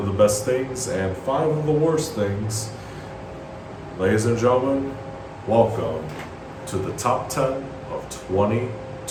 the best things and 5 of the worst things, ladies and gentlemen, welcome to the top 10 of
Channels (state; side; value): identical; both; correlation 1.00